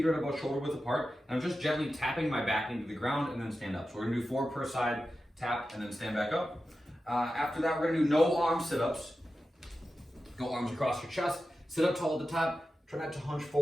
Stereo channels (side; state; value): both; normal; correlation 0.92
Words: are at about shoulder width apart, and I'm just gently tapping my back into the ground and then stand up. So we're going to do 4 per side, tap, and then stand back up. After that, we're going to do no arm sit-ups. Go arms across your chest, sit up tall at the top. Try not to hunch